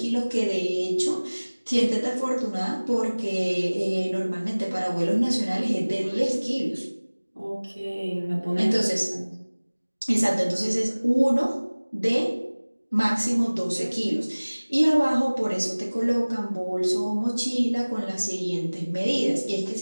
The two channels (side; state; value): both; inverted; correlation -1.00